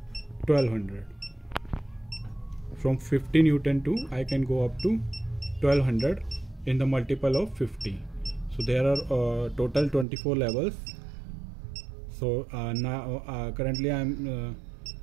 1200. From 50 Newton to I can go up to 1200 in the multiple of 50. So there are total 24 levels. So now currently I am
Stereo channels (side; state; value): left; drops out; at 10.1 s